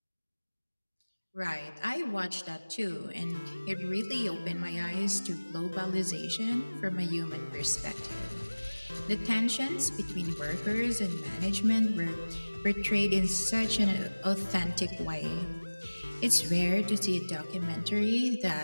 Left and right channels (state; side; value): inverted; both; correlation -1.00